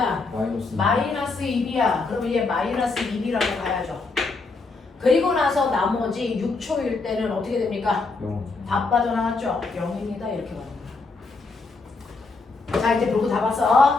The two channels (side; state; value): right; quieter; 3.9 dB